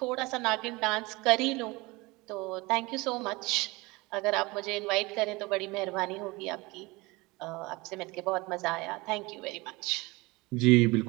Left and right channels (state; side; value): quieter; left; 23.4 dB